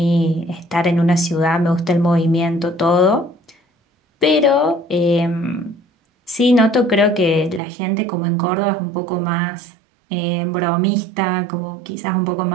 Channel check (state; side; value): drops out; left; at 7.6 s